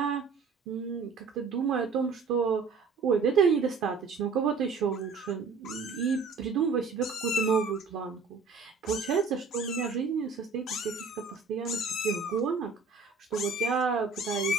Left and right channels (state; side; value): quieter; left; 4.8 dB